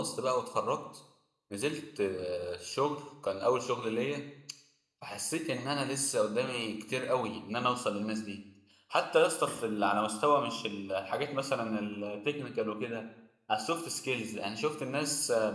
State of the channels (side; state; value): both; identical; correlation 1.00